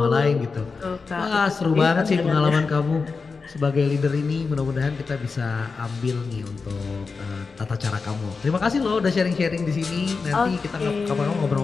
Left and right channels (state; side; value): quieter; right; 4.6 dB